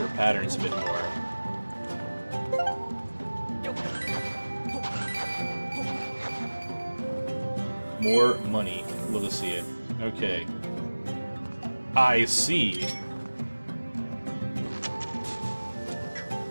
patterns a bit more. More money. Love to see it. Okay. I see.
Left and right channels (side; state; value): both; inverted; correlation -1.00